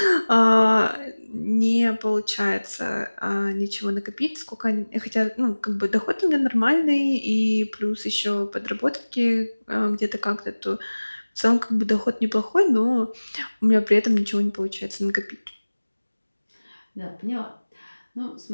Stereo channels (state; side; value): inverted; both; correlation -1.00